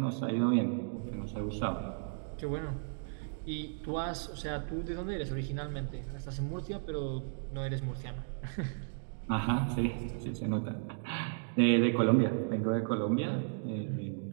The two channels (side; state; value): left; silent; digital silence